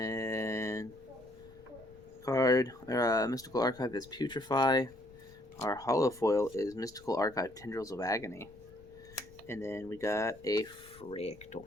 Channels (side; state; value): left; noise; rumble, 24 dB below the sound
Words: Mystical Archive is Putrefy. Our holofoil is Mystical Archive Tendrils of Agony. And then we got a Fractal.